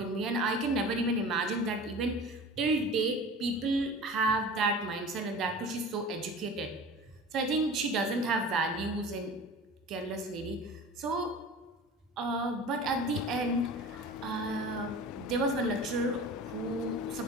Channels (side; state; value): both; normal; correlation 0.38